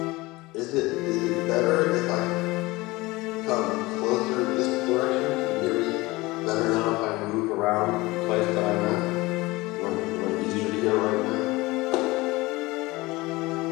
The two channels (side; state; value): right; quieter; 21.3 dB